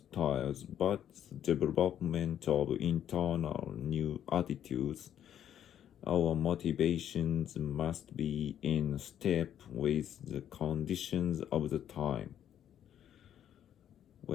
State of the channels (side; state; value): right; quieter; 10.2 dB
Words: but the development of internal new attitudes. Our motivations must be in step with the conditions of the time.